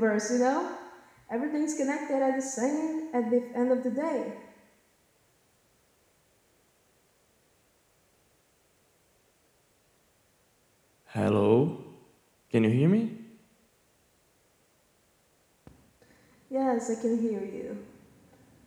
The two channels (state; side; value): identical; both; correlation 1.00